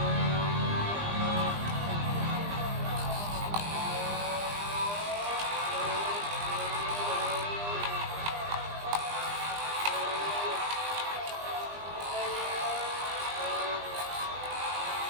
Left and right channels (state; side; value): late; left; 20 ms